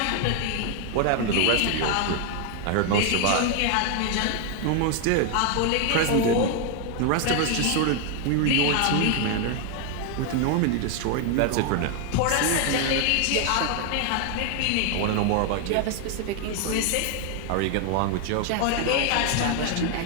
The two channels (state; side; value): different; both; correlation 0.00